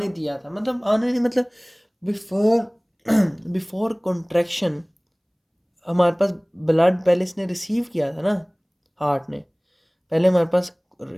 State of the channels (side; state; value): both; identical; correlation 1.00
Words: दिया था, मतलब आने नहीं मतलब बिफोर बिफोर कॉन्ट्रैक्शन हमारे पास ब्लड पहले इसने रिसीव किया था ना, हार्ट ने पहले हमारे पास